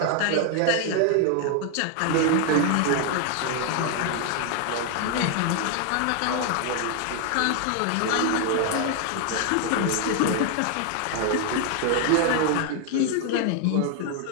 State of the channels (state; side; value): different; both; correlation 0.00